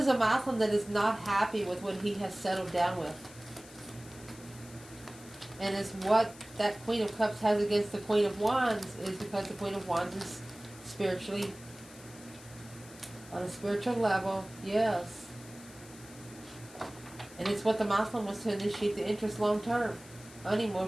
a masculine that is not happy with what he has settled down with. And it's what that Queen of Cups has against the Queen of Wands is because the Queen of Wands is spiritually on a spiritual level. Yes. And it's what the masculine was to initiate the interest long term.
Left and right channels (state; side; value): noise; left; hiss, 19 dB below the sound